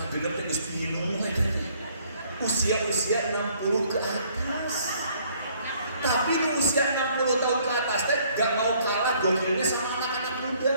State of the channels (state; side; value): inverted; both; correlation -0.62